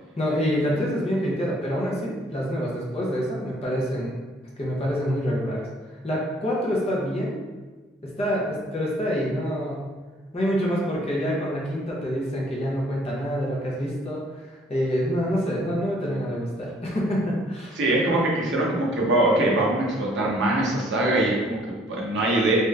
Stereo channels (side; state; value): both; normal; correlation 0.61